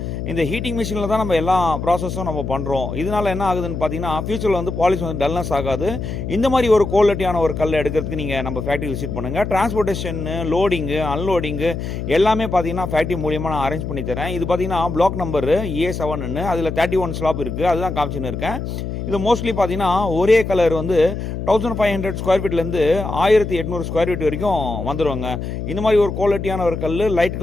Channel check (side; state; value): left; noise; hum, 5 dB below the sound